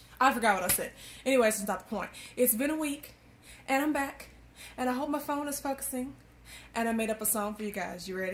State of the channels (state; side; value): identical; both; correlation 1.00